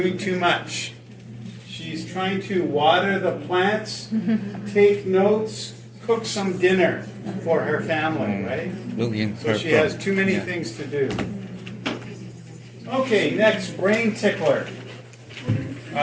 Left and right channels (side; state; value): both; identical; correlation 1.00